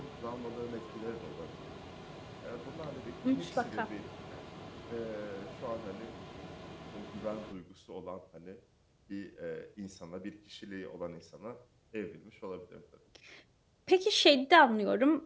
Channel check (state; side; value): identical; both; correlation 1.00